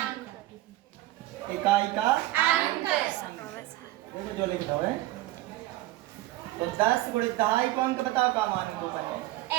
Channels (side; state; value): left; quieter; 16.7 dB